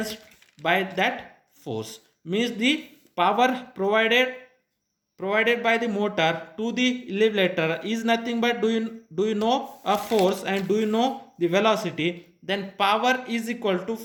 by that force, means the power provided by the motor to the elevator is nothing but, do you know a force and do you know the velocity, then power is equal to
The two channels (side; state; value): both; identical; correlation 1.00